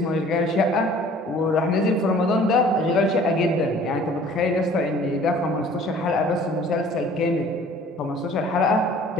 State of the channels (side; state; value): both; normal; correlation 0.51